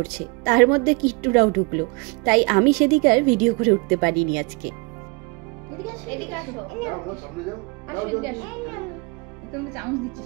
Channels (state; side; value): quieter; left; 28.9 dB